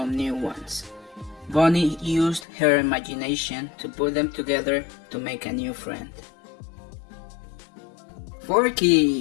new ones. Bonnie used her imagination to put them together to make a new friend.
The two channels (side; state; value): right; drops out; at 2.5 s